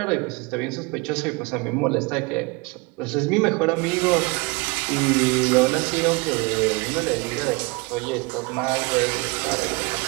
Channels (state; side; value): quieter; left; 27.4 dB